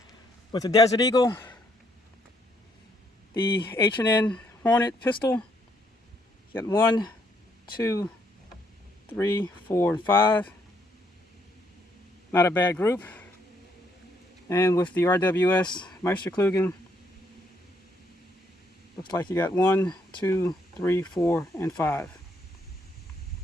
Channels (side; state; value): both; normal; correlation 0.71